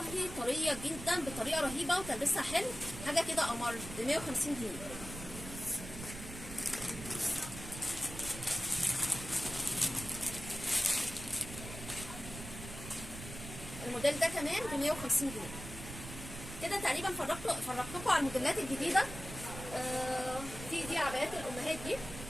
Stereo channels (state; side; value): noise; right; rumble, 11 dB below the sound